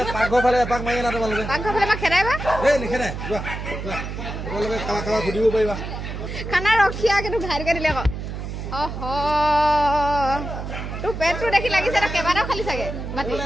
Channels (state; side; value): noise; right; hum, 7 dB below the sound